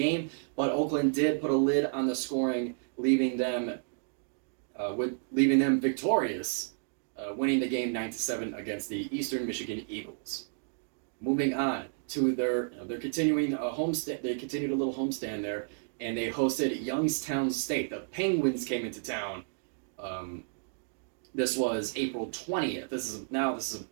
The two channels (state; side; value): silent; left; digital silence